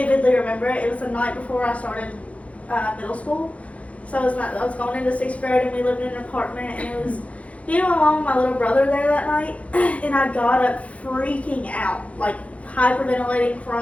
remember it. It was the night before I started middle school. So I was going into 6th grade, and we lived in an apartment, and it was along with my little brother there that night. And I got up freaking out, like hyperventilating,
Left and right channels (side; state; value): right; late; 0.065 ms